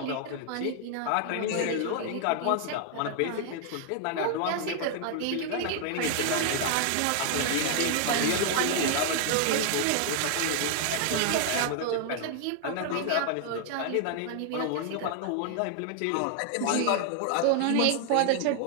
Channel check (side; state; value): both; different; correlation 0.00